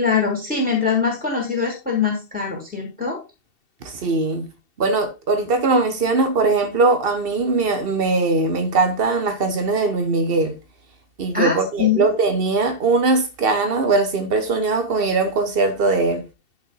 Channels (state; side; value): late; left; 2.7 ms